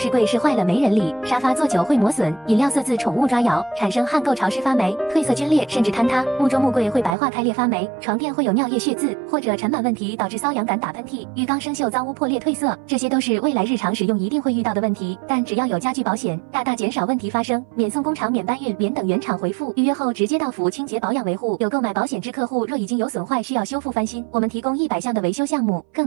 柜是坏了没人理，沙发坐久会磨损，饮料色渍宠物抓咬，产生焊垢潮湿发霉，褪色皲裂甚至坍塌，木桌木柜会白化开裂发霉，床垫会有尿液血渍，或者尘螨问题导致瘙痒感打喷嚏，浴缸生锈脏污破裂褪色，这些都是未来日常使用一定会遇到的问题。但只要有家具保险，大大减少问题发生，免送工厂、免搬运、免等原厂回复，预约后直接到府清洁保养维护。有购买保险之客户，若已经有损坏需要修复翻新，我们提供100项的维修项目，更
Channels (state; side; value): drops out; left; at 7.2 s